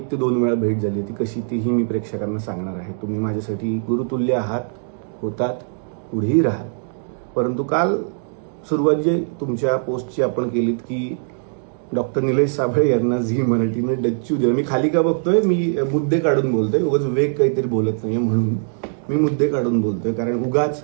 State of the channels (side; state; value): left; silent; digital silence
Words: ते 2 वेळा भेट झाली होती. कशी तीही मी प्रेक्षकांना सांगणार आहे. तुम्ही माझ्यासाठी गुरुतुल्य आहात, होतात, पुढेही राहाल. परंतु काल सुरुवात जी तुमच्या पोस्टची आपण केलीत की डॉक्टर निलेश साबळे यांना झी मराठीने डच्चू दिला. मी खाली का बघतोय, मी मुद्दे काढून बोलतोय, उगाच वेग काहीतरी बोलत नाहीये म्हणून मी मुद्दे काढून बोलतोय. कारण उगाच